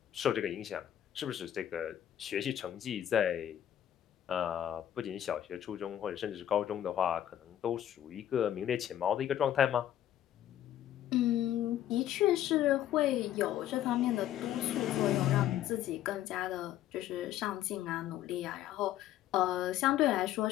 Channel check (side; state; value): right; quieter; 11.6 dB